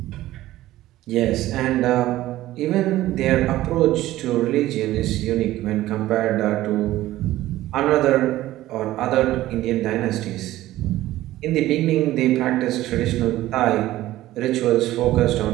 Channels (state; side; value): quieter; left; 15.4 dB